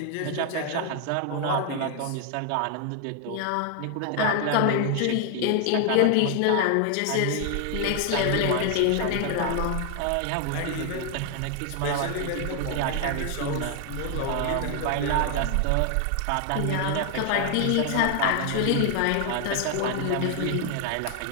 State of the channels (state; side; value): different; both; correlation 0.00